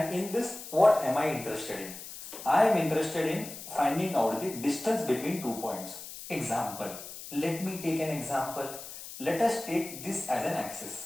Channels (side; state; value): left; noise; hiss, 12 dB below the sound